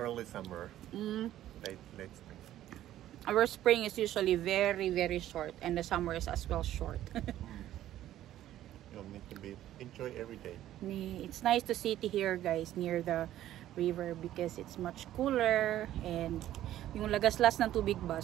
summer. Late spring. Our spring is usually very, very short, and the summer is as well short. You need to enjoy every day. It's nice to sit here, guys, near the river because it's much cooler, and yung lagaslas ng tubig ba,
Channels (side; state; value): left; quieter; 13.0 dB